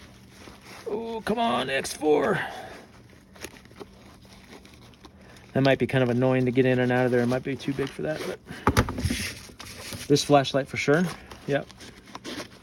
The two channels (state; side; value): identical; both; correlation 1.00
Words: Oh, come on, X4. That might be kind of annoying to get in and out of there. It might be too big for that, but this flashlight for sure. Yep.